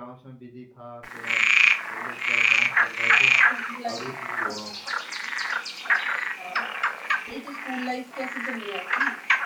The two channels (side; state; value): both; identical; correlation 1.00